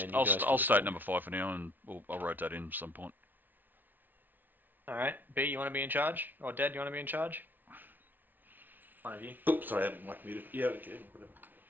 you I'll guys can state decide. number 5 for now, and I'll rotate in at some point. Alright, B, you want to be in charge? Or Dad, you want to be in charge? One of you. Oops, sorry, I haven't mic muted. Yeah, okay, whatever.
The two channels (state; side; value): late; left; 0.087 ms